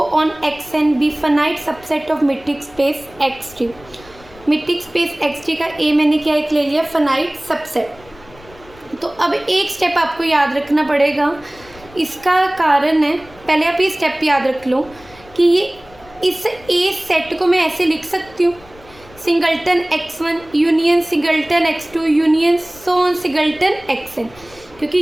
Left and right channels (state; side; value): noise; left; rumble, 24 dB below the sound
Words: on xn be finite subset of metric space x3। Metric space x3 का ए मैंने क्या एक ले लिया? Finite subset. तो अब एक स्टेप आपको याद रखना पड़ेगा। इसका कारण है, पहले आप ये स्टेप याद रख लो कि ये इस ए सेट को मैं ऐसे लिख सकती हूँ, singleton x1 union singleton x2 union so on singleton xn, क्योंकि